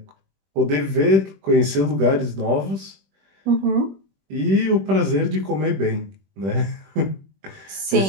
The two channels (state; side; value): late; left; 21 ms